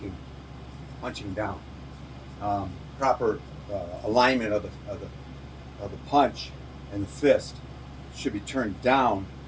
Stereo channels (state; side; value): identical; both; correlation 1.00